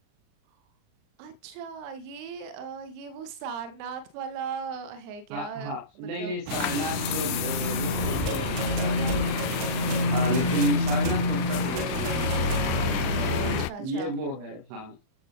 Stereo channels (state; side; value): late; left; 38 ms